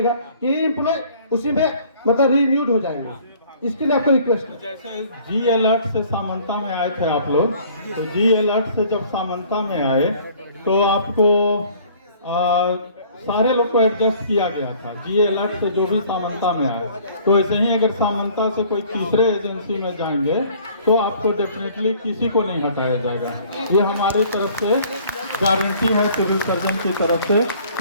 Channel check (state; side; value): inverted; both; correlation -0.54